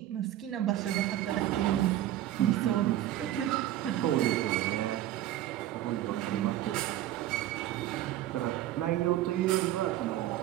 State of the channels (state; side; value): quieter; left; 13.4 dB